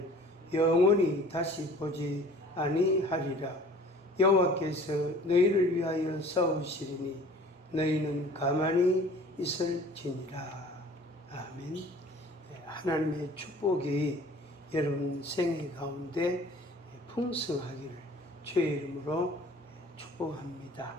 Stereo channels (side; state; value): both; normal; correlation 0.48